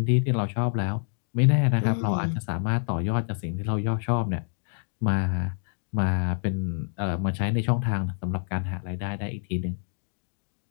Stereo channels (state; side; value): silent; right; digital silence